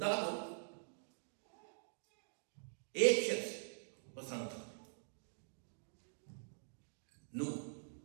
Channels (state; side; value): silent; left; digital silence